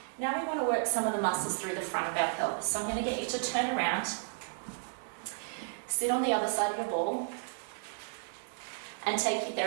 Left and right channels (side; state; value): left; silent; digital silence